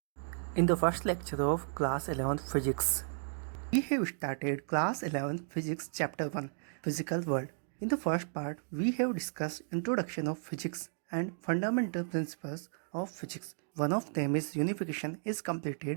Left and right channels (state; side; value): silent; left; digital silence